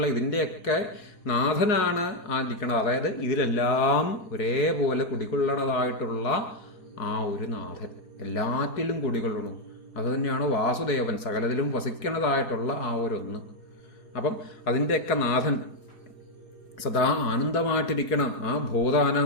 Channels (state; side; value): late; right; 4.7 ms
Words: ഇതിൻ്റെയൊക്കെ നാഥനാണ് ഇരിക്കുന്നത്. അതായത് ഇതിലെല്ലാം ഒരേപോലെ കുടികൊള്ളണതായിട്ടുള്ള ആ ഒരു നാഥൻ എല്ലാറ്റിലും കുടികൊള്ളണം. അത് തന്നെയാണ് വാസുദേവൻ, സകലത്തിലും വസിക്കണതായിട്ടുള്ള ആ ഒരു അപ്പം അതിൻ്റെയൊക്കെ നാഥൻ സദാ ആനന്ദമായിട്ടിരിക്കണം. ആ ഭൂതാനം,